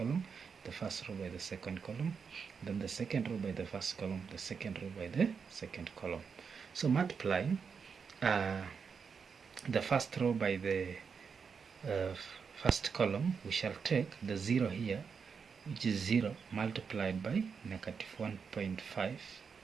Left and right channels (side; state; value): left; quieter; 6.0 dB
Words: the first row by the second column, then the second row by the first column, the second row by the second column. So multiplying the first row by the first column, we shall take the 0 here, which is 0 multiplied by negative 1.5,